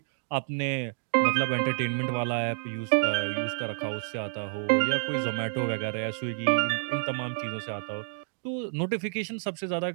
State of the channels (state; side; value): silent; left; digital silence